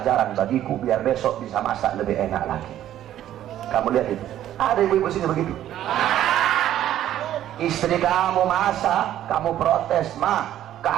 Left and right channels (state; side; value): quieter; left; 12.1 dB